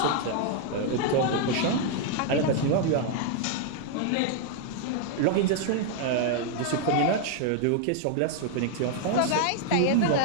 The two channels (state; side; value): different; both; correlation 0.00